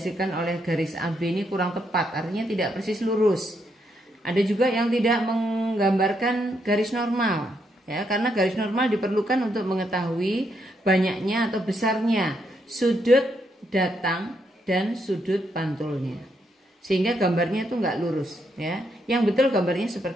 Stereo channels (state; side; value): normal; both; correlation 0.77